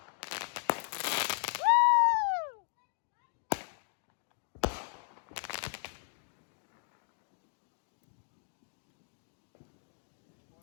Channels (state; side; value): silent; right; 54 dB below the other